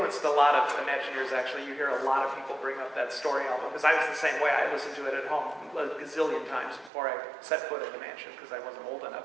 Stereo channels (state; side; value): drops out; left; at 6.9 s